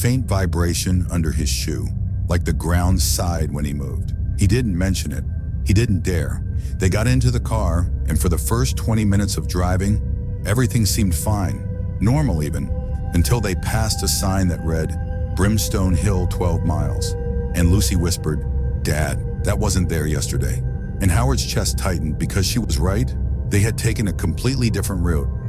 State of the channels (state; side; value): identical; both; correlation 1.00